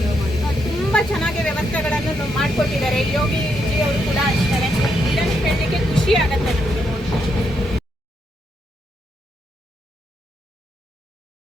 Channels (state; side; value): normal; both; correlation 0.79